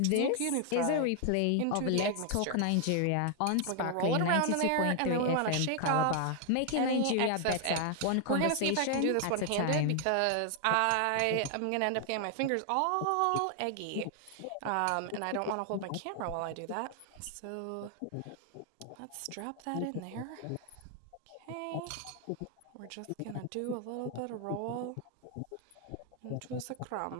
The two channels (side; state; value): both; different; correlation 0.00